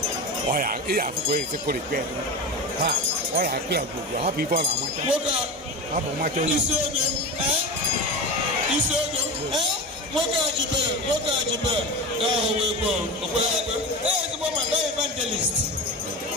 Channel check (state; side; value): normal; both; correlation 0.25